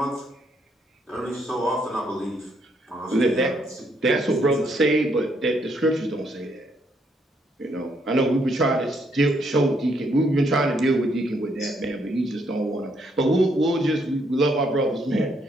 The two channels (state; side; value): normal; both; correlation 0.72